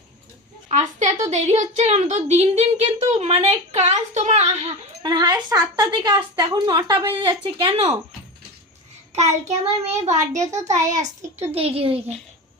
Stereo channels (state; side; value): normal; both; correlation 0.25